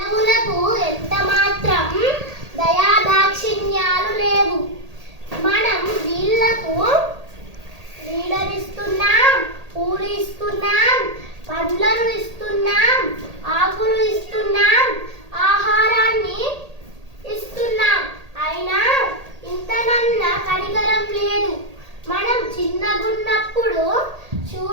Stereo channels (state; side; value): late; left; 1.8 ms